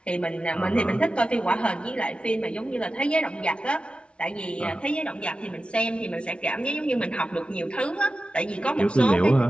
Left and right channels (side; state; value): right; late; 0.058 ms